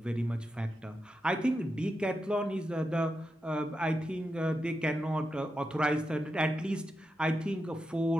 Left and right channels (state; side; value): normal; both; correlation 0.88